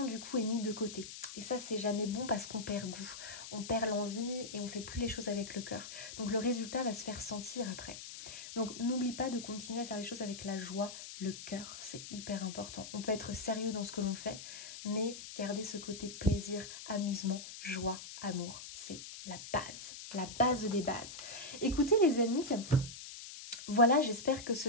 du coup est mise de côté. Et ça c'est jamais bon parce qu'on perd goût, on perd l'envie et on fait plus les choses avec le cœur. Donc le résultat va se faire sentir après. Donc n'oublie pas de continuer à faire les choses avec la joie, le cœur, c'est hyper important. On peut être sérieux dans ce que l'on fait, mais garder ce côté plaisir, amusement, joie, amour, c'est la base des bases. Écoutez les amis, voilà, j'espère que ce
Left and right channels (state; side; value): noise; left; hiss, 11 dB below the sound